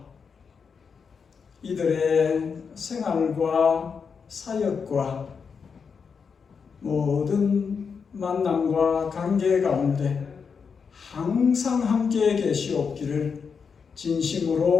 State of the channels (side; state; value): right; quieter; 5.9 dB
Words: 이들의 생활과 사역과 모든 만남과 관계 가운데 항상 함께 계시옵기를